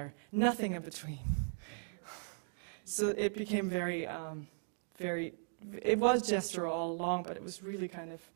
Nothing in between. So it became very, it was gestural all along, but it was really kind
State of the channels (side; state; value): left; silent; digital silence